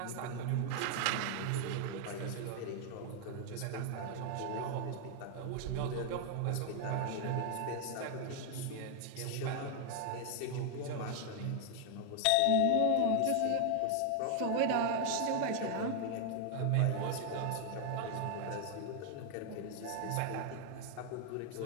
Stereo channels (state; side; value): different; both; correlation 0.00